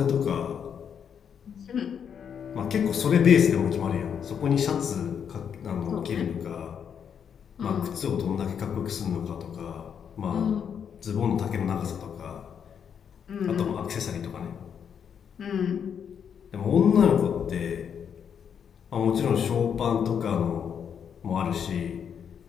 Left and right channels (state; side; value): quieter; right; 7.7 dB